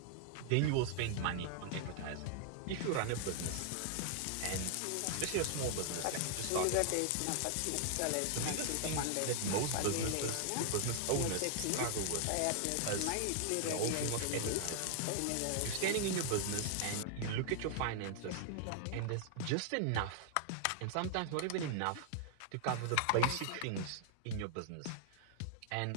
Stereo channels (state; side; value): different; both; correlation 0.00